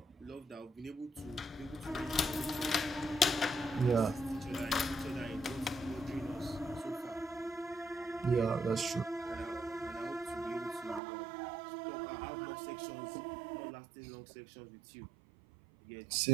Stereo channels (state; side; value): drops out; left; at 11.0 s